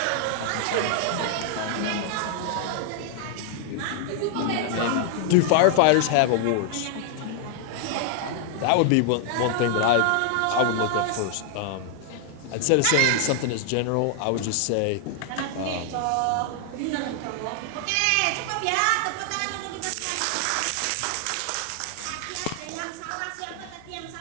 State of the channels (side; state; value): both; different; correlation 0.00